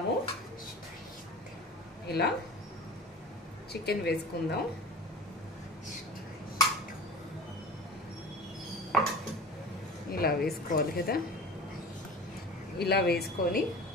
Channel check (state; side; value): normal; both; correlation 0.36